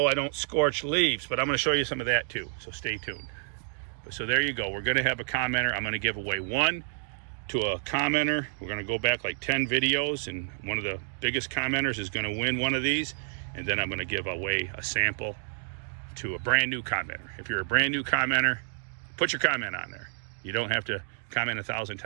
I don't scorch leaves. But I'm going to show you some of that too, so stay tuned. So there you go. We're going to have a commenter. I'm going to give away one to a commenter. We're going to go back like 10 videos, and one of the biggest commenters is going to win one of these, and then I'm going to give away a sample to a brand new commenter. If you're a brand new commenter, put your comment on there. You don't have to comment 1,000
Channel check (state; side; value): silent; left; digital silence